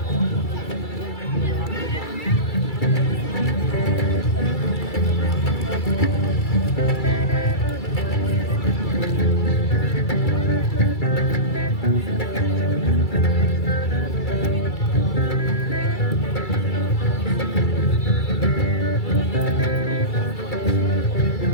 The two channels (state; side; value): late; right; 2.3 ms